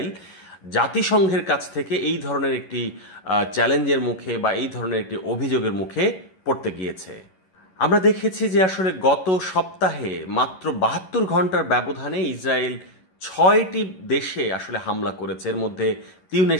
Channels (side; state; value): right; late; 11 ms